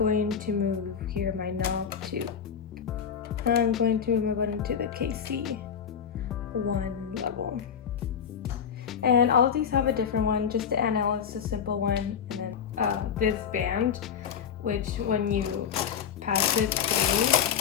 to move here my knob to, I'm going to move my button to the KC1 level. And all of these have a different one. Just the NL is a simple one, and then this band, which when you pass it through,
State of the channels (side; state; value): right; quieter; 7.6 dB